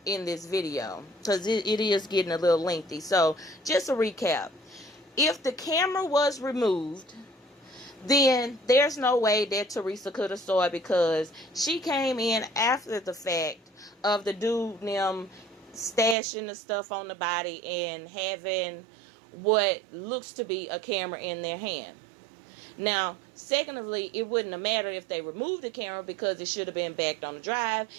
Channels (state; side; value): drops out; left; at 16.2 s